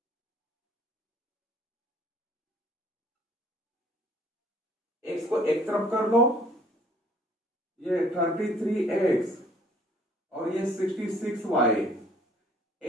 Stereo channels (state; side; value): normal; both; correlation 0.58